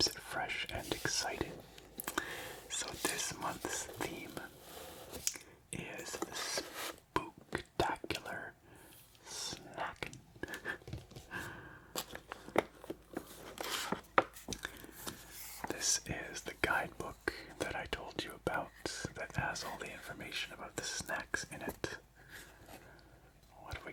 it fresh and exciting. So this month's theme is the Spooktacular Snackin. This is the guidebook that I told you about that has all the information about the snacks in it. What have we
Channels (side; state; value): both; identical; correlation 1.00